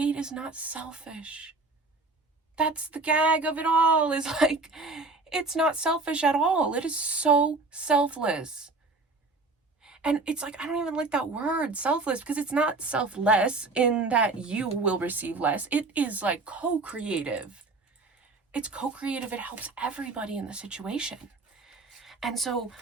is not selfish. That's the gag of it all, is like, it's not selfish at all. It is so selfless. And it's like, I don't even like that word, selfless, because it's not selfless in that you will receive less. It is like co-creative. It's co-creative. It helps everybody in the situation. And so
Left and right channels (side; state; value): left; quieter; 3.6 dB